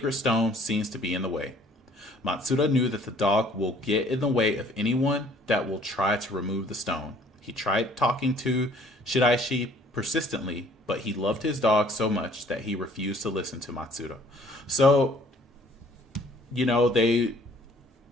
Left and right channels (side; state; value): both; normal; correlation 0.57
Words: stone seems to be in the way. Matsuda knew that the dog will get in the way of anyone that will try to remove the stone. He tried talking to Shiraishi persistently, but he loved his dog so much that he refused to listen to Matsuda. So, you know, they